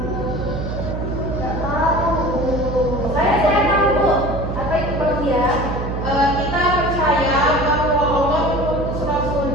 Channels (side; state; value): right; noise; hum, 4 dB below the sound